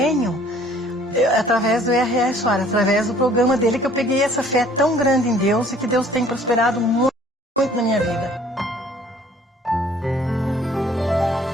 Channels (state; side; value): normal; both; correlation 0.56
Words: através do R.R. Soares, através do programa dele, que eu peguei essa fé tão grande em Deus e que Deus tem prosperado muito, muito na minha vida.